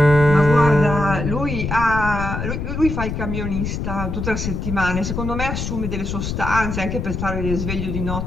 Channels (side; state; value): left; noise; rumble, 4 dB below the sound